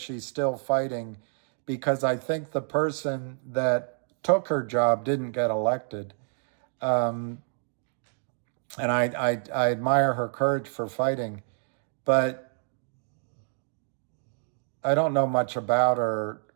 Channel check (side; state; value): left; silent; 59 dB below the other